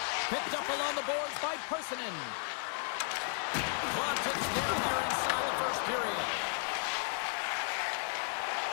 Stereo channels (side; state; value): right; silent; 55 dB below the other